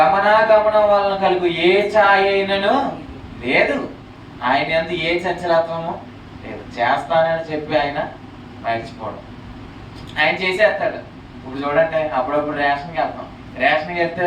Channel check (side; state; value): both; identical; correlation 1.00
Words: వలన కలుగు ఏ ఛాయ అయినను లేదు. ఆయన యందు ఏ చంచలత్వము లేదు. చేస్తానని చెప్పి ఆయన మర్చిపోవడం. ఆయన చేసేస్తాడు. ఇప్పుడు చూడండి, అప్పుడప్పుడు రేషన్కి వెళ్తాం. రేషన్కి